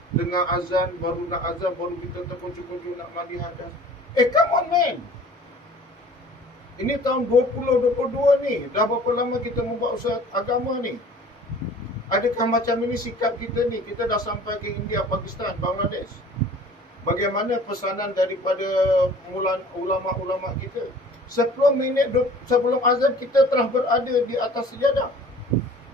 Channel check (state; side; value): normal; both; correlation 0.48